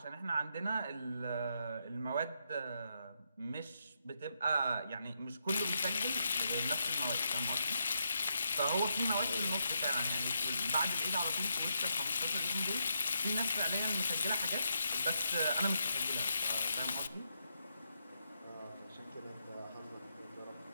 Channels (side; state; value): both; inverted; correlation -0.81